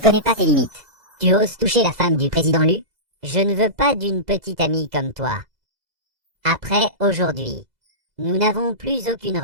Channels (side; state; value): left; late; 2.0 ms